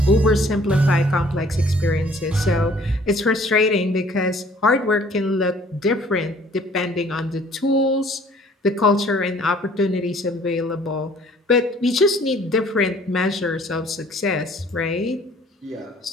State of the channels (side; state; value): both; normal; correlation 0.56